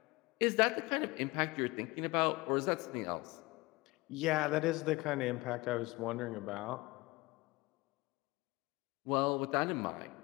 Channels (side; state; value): right; quieter; 22.4 dB